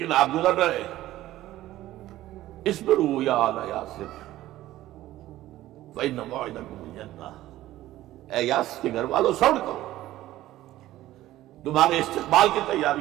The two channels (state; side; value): quieter; left; 15.0 dB